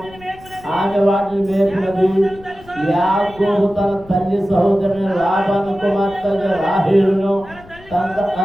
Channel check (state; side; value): noise; left; rumble, 22 dB below the sound